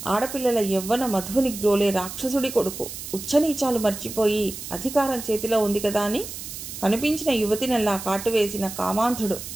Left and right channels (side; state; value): right; noise; hiss, 10 dB below the sound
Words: ఆడపిల్లల యవ్వన మధువుని గ్రోలే రాక్షసుడి కొడుకు. ఉచ్చనీచాలు మర్చిపోయి అధికారం చేతిలో ఉంది కదా అని కనిపించిన యువతినల్లా కాటువేసిన కామాంధుడు